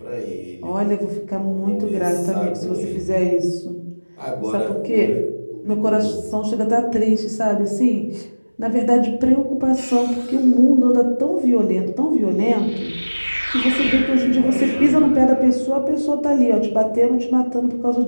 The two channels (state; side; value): inverted; both; correlation -1.00